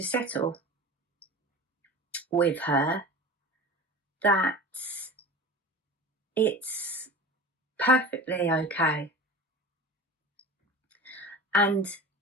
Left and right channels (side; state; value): both; normal; correlation 0.34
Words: settle with her that it's perfectly okay. And